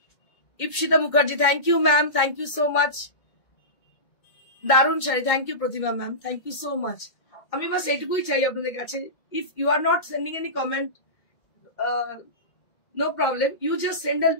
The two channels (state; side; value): late; right; 2.2 ms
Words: Ipsita Mukherjee, thank you ma'am, thank you so much, দারুণ sari, thank you Pratima ma'am, thank you so much. আমি বাস এইটুকুই চাই আপনাদের কাছে, if you are not sending any comment, no problem, you just send a